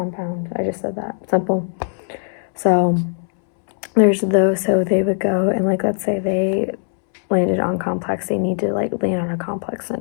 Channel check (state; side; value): silent; right; 66 dB below the other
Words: I just said that. Simple. So there's those. So they would go and like, let's say they landed on complex. They need to like land on a complex